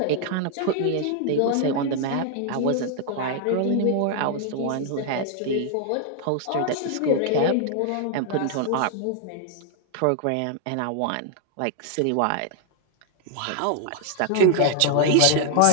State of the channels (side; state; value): both; different; correlation 0.00